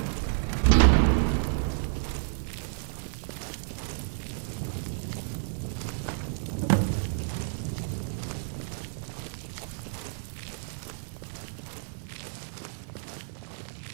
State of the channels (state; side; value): silent; left; digital silence